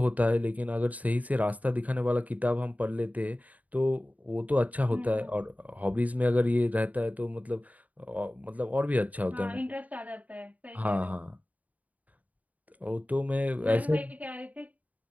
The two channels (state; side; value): late; left; 0.073 ms